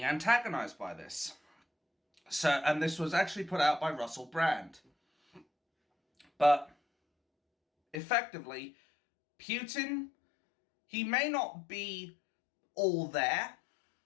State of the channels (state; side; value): drops out; right; at 8.0 s